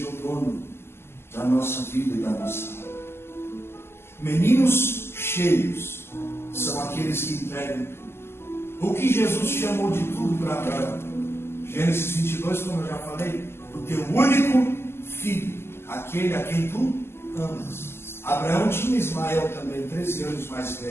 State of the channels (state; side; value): late; right; 0.12 ms